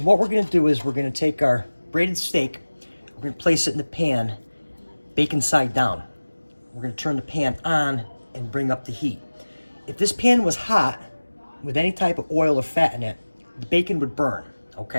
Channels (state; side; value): inverted; both; correlation -1.00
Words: what we're going to do is we're going to take our braided steak, we're going to place it in the pan, bacon side down. We're going to turn the pan on and bring up the heat. If this pan was hot, with any type of oil or fat in it, the bacon would burn,